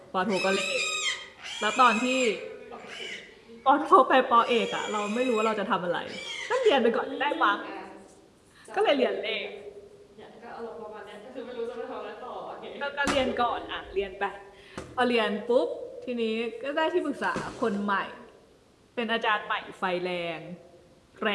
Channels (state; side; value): identical; both; correlation 1.00